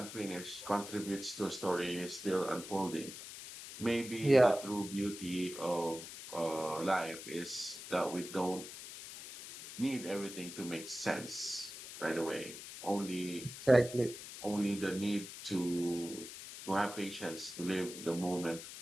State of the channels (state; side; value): noise; left; hiss, 11 dB below the sound